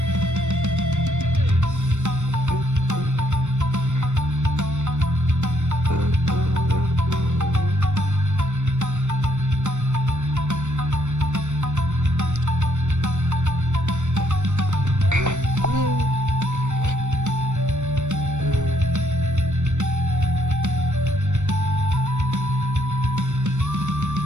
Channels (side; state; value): left; late; 0.84 ms